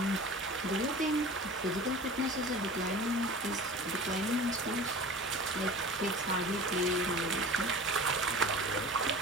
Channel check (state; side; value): normal; both; correlation 0.38